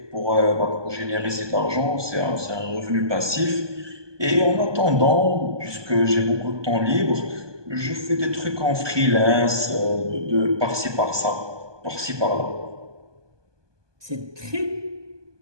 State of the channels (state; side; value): late; left; 1.2 ms